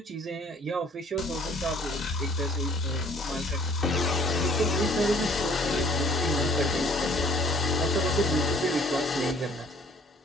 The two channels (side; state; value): both; normal; correlation 0.57